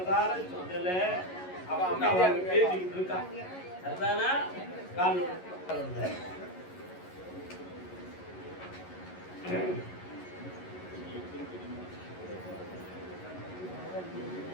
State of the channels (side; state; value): right; late; 11 ms